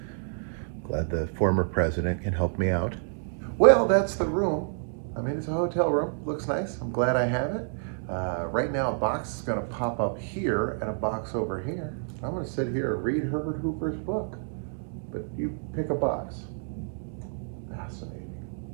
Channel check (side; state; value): left; silent; digital silence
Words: Glad the former president can help me out. Well, that's the room. I mean, it's a hotel room. Looks nice. I'm glad I have it. Right now, a box is going to pop up here and a box over here. I'm going to sit here and read Herbert Hoover's book. But you pick a box. Fascinating.